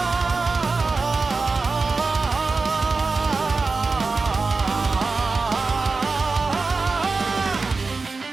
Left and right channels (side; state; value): left; quieter; 4.1 dB